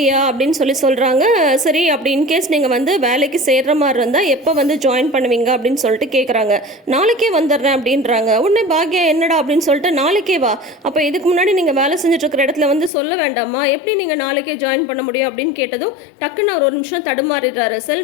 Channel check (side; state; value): right; drops out; at 12.9 s